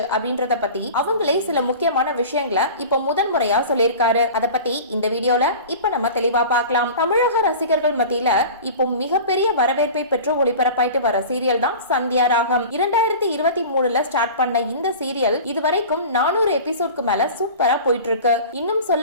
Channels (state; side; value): inverted; both; correlation -0.37